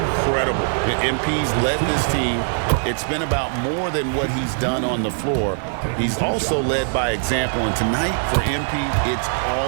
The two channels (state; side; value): silent; left; digital silence